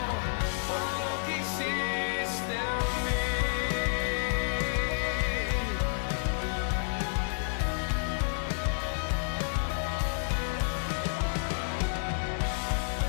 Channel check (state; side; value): silent; right; 58 dB below the other